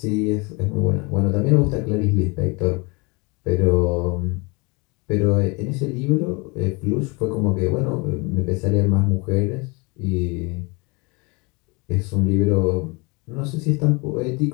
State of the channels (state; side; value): quieter; right; 28.6 dB